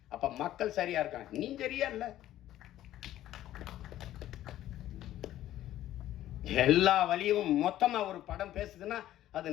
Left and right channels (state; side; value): quieter; right; 13.3 dB